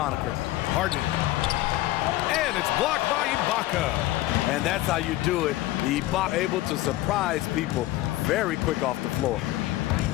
Harden. And it's blocked by Ibaka. And that's how you do it. Ibaka able to surprise people very quick off the floor.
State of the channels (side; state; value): right; quieter; 16.6 dB